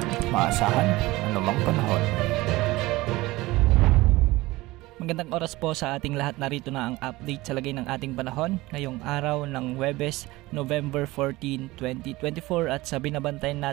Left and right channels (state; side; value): quieter; left; 19.7 dB